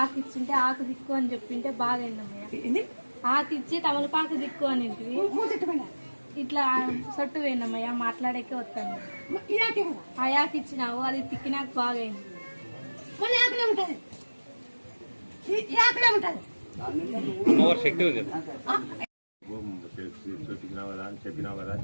ఆకు ఇచ్చింటే ఆకు దిక్కు అని చెప్పింటే బాగా అయిందమ్మయ్య. ఆకు ఇచ్చి తమలపాకు దిక్కు అని ఇట్లా సొట్టు పోయినమ్మయ్య. మాట్లాడేకే వస్తాను. ఆ యాకు ఇచ్చినావు, అది తిక్కినాక బాగా అయింది. శక్తి ఉంది. చెప్పినావు కదా అని చెప్పినా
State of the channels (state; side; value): inverted; both; correlation -1.00